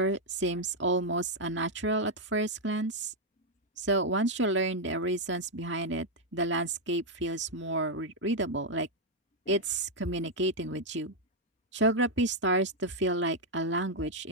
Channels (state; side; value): normal; both; correlation 0.00